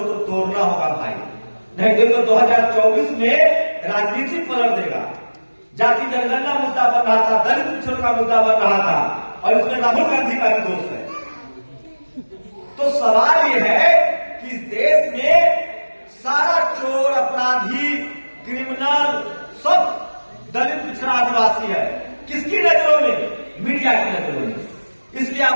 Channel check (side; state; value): both; inverted; correlation -1.00